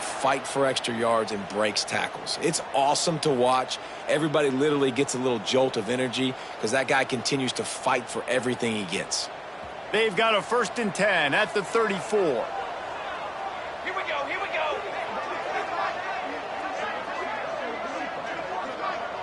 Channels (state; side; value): identical; both; correlation 1.00